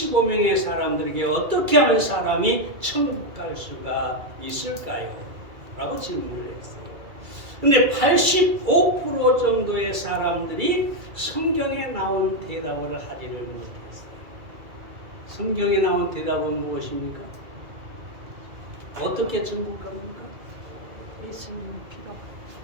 사람들에게 어떻게 하면 사람이 천국 갈 수가 있을까요? 라고 질문을 했어요. 근데 85% 정도의 사람들이 성경에 나온 대답을 하지를 못했어요. 성경에 나온 대답은 무엇입니까? 어떻게 천국 갑니까? 예수님 피로.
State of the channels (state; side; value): late; left; 2.3 ms